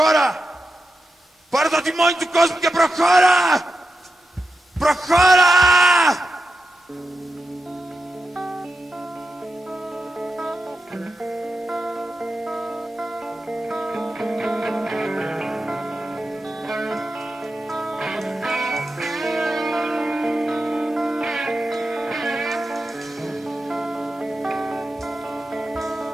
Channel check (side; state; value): both; normal; correlation 0.89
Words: Πάρε το τιμόνι του κόσμου και προχώρα. Προχώρα!